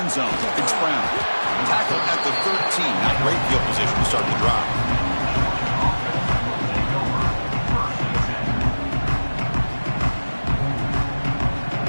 zone. It's Brown. Tackled at the 13. Not great field position to start the drive.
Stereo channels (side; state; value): both; inverted; correlation -1.00